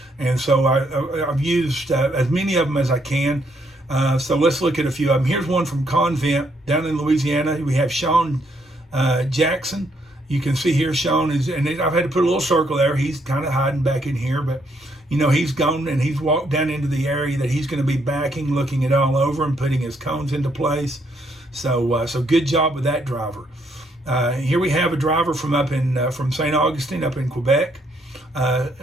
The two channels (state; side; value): normal; both; correlation 0.72